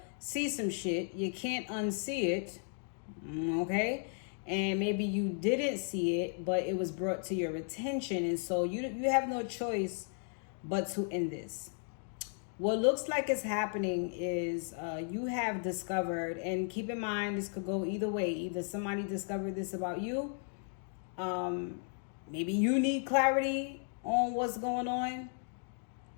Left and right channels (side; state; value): right; silent; 54 dB below the other